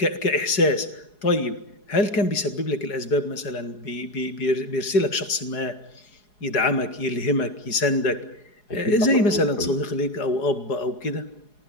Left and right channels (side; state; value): right; late; 4.8 ms